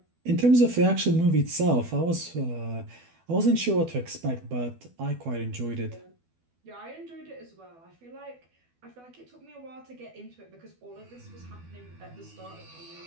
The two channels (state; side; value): late; left; 12 ms